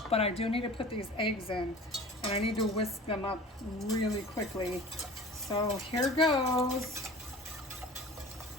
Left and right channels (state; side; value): normal; both; correlation 0.42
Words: but I do need to put these eggs in, and I need to whisk them up really quickly. So here goes.